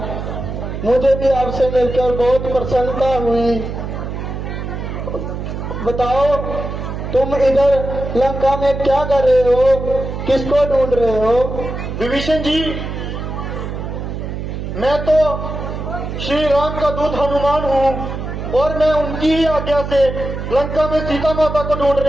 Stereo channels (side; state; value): right; noise; hum, 6 dB below the sound